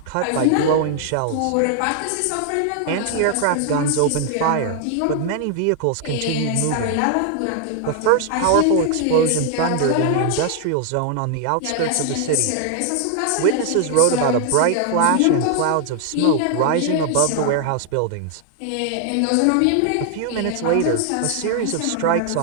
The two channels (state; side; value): different; both; correlation 0.00